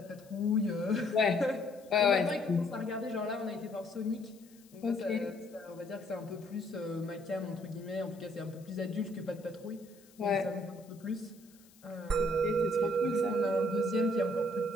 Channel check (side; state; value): left; noise; hiss, 27 dB below the sound